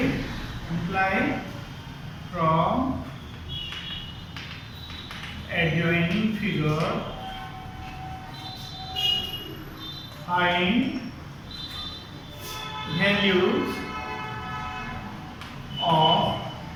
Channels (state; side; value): identical; both; correlation 1.00